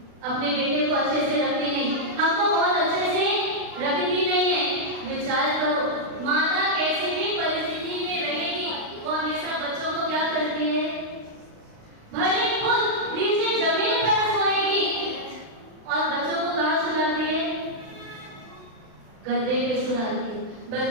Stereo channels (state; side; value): late; left; 36 ms